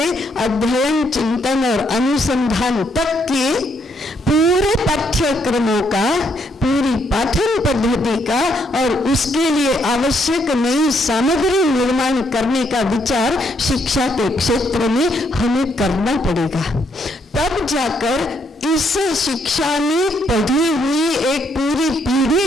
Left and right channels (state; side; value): normal; both; correlation 0.73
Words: अध्ययन, चिंतन और अनुसंधान तक के पूरे पाठ्यक्रमों का, पूरी पाठन पद्धति का और उसके लिए आवश्यक नई सामग्री निर्माण करने का विचार शिक्षा के क्षेत्र में हमें करना पड़ेगा। तब जाकर इस शिक्षा में पढ़ी हुई एक पूरी पीढ़ी